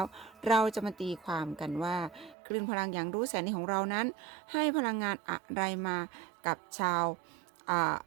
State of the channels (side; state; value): left; drops out; at 2.4 s